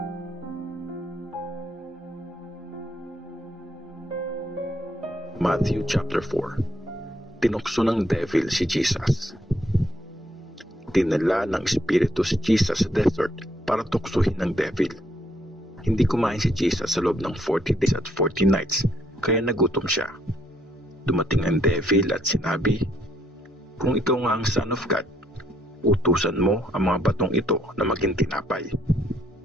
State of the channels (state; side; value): normal; both; correlation 0.71